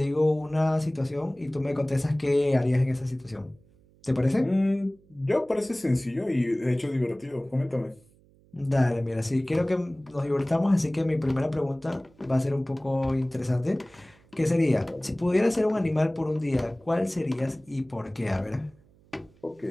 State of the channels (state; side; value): noise; right; hum, 30 dB below the sound